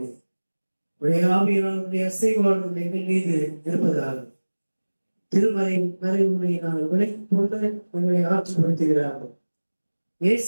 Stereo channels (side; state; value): both; inverted; correlation -1.00